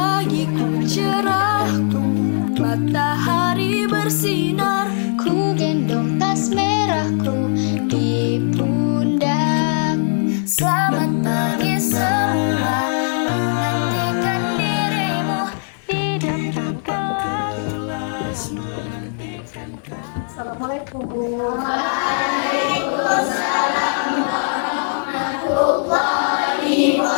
cerah, matahari bersinar, ku gendong tas merahku di pundak. Selamat pagi semua, menantikan dirimu di depan kelas. Assalamualaikum. Waalaikumsalam warahmatullahi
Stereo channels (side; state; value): right; silent; 66 dB below the other